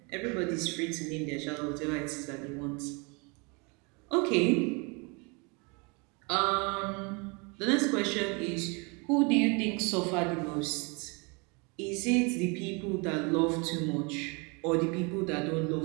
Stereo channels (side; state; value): left; quieter; 30.7 dB